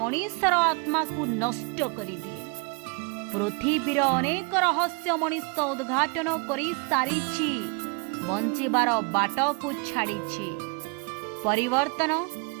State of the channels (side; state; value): left; quieter; 32.2 dB